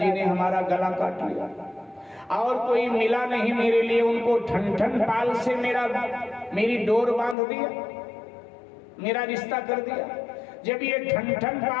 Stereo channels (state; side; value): drops out; right; at 7.4 s